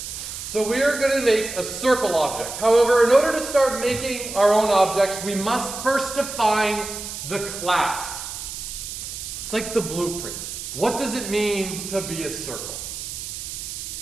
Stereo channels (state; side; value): noise; right; hiss, 8 dB below the sound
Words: So we are going to make a circle object. However, in order to start making our own objects, we must first define the class. It's like the blueprints. What does it mean to be a circle?